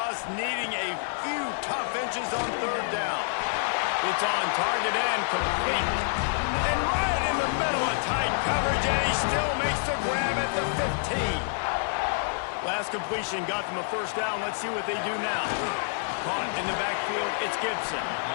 needing a few tough inches on third down. It's on target and complete. And right in the middle of tight coverage, and he still makes the grab at the 15. Last completion got them a first down. Let's see what they do now. Caught in the backfield, it's Gibson.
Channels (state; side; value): silent; right; digital silence